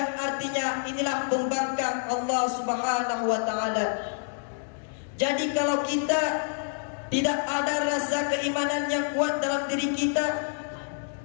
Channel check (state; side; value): silent; right; digital silence